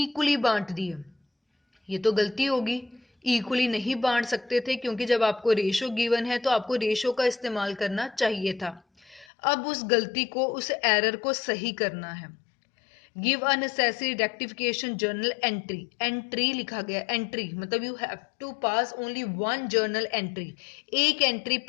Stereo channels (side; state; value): right; drops out; at 9.2 s